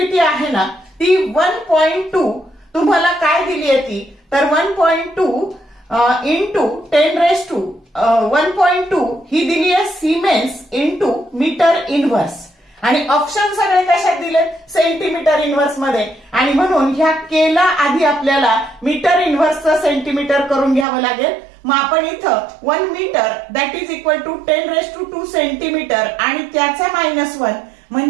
आहे ना ती 1.2 तुम्हाला काय दिली आहे ती तर 1.2 इंटू 10⁻1.2 ही दिली आहे सिमेन्स इंटू मीटर इनव्हर्स। आणि ऑप्शन सगळे कशात दिले? सेंटीमीटर इनव्हर्स मध्ये। आणि म्हणून ह्या केला आधी आपल्याला मीटर इनव्हर्सचं सेंटीमीटर करून घ्यावं लागेल। मग आपण इथं 1 metre that is equal to 10⁻2 centimetre आणि त्याचा -1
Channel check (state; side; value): drops out; left; at 20.9 s